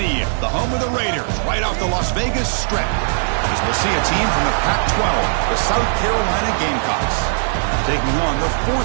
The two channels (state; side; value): silent; left; digital silence